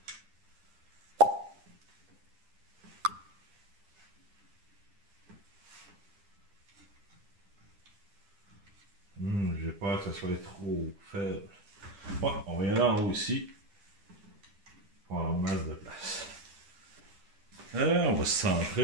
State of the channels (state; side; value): late; left; 10 ms